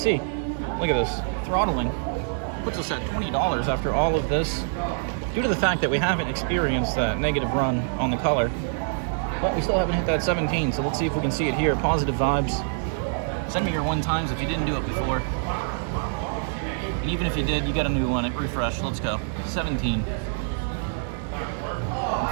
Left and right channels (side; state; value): left; silent; digital silence